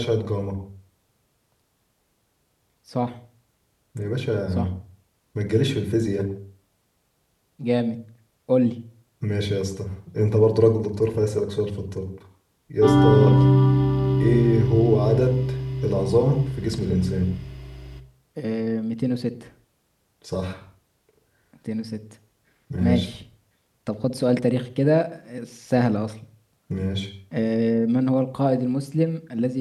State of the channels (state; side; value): identical; both; correlation 1.00